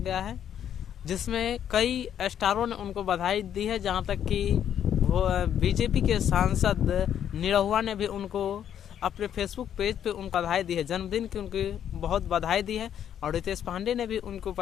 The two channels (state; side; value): quieter; right; 9.6 dB